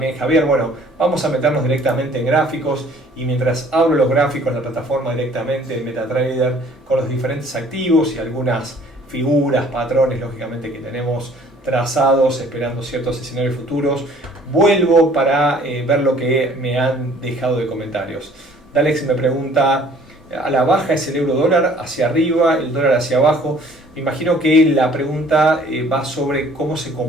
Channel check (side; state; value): both; normal; correlation 0.55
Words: Javier. Bueno, vamos a meternos directamente en gráficos, y mientras abro los gráficos en la plataforma directamente en MetaTrader con los diferentes activos y algunas figuras, patrones lógicamente que tenemos trazados esperando ciertos escenarios futuros, vuelvo para ver lo que me han dejado de comentarios. Dalex me pregunta: ¿a la baja es el euro dólar, hacia arriba, el dólar hacia abajo? Me imagino que la pregunta va sobre cómo se